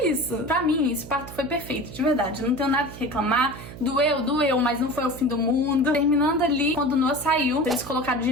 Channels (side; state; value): right; noise; hum, 14 dB below the sound